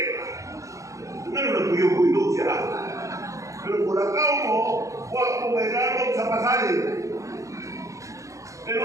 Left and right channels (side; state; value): left; late; 0.15 ms